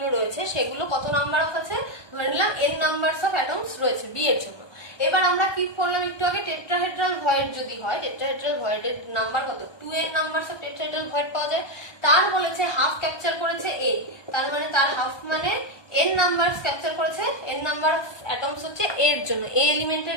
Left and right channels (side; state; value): right; late; 1.2 ms